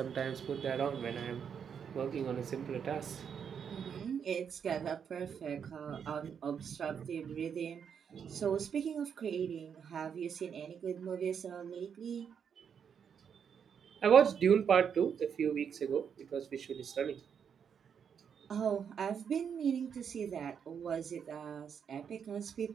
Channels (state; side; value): quieter; left; 7.4 dB